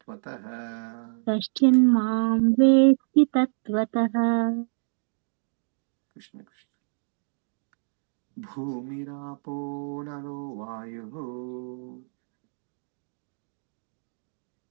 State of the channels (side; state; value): left; silent; 60 dB below the other